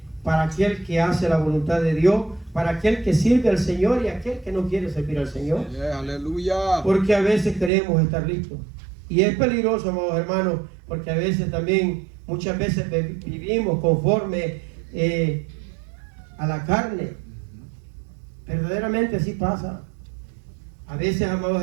para aquel que hace la voluntad de Dios, para aquel que sirve al Señor y aquel que no quiere servir al Señor. Aleluya. Porque a veces creemos estar listos. Y es peligroso, amados hermanos, porque a veces también, muchas veces vivimos conforme a la carne. Verdaderamente así pasa. A veces, amados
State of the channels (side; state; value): left; drops out; at 7.7 s